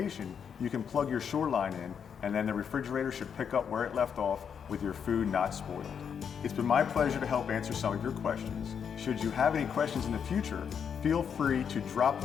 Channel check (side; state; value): right; quieter; 7.3 dB